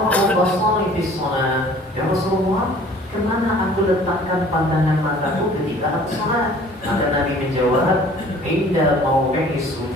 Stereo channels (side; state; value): both; normal; correlation 0.51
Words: basari fi sholat? Ya Rasulullah, kemana aku letakkan pandangan mataku ketika aku sholat? Maka Nabi menjawab, inda mauqi'i